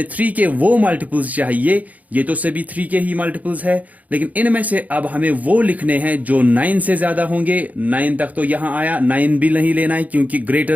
3 के वो मल्टीपल्स चाहिए। ये तो सभी 3 के ही मल्टीपल्स है, लेकिन इनमें से अब हमें वो लिखने हैं जो 9 से ज्यादा होंगे। 9 तक तो यहां आया, 9 भी नहीं लेना है क्योंकि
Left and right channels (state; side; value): late; left; 0.075 ms